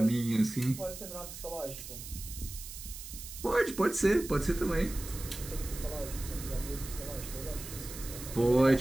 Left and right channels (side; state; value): right; noise; hiss, 11 dB below the sound